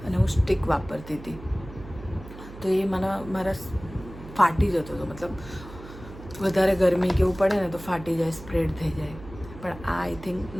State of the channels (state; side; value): noise; right; hum, 15 dB below the sound